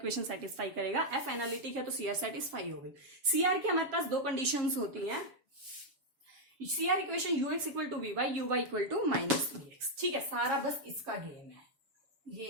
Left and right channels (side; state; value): left; late; 7.4 ms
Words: सेटिस्फाई करेगा। एफ एनालिटिक है तो सीआर सेटिस्फाई हो गई। सीआर की हमारे पास दो कंडीशंस होती हैं, CR equation U X equal to we Y, U Y equal to minus we x, ठीक है। सारा बस इसका गेम है, ये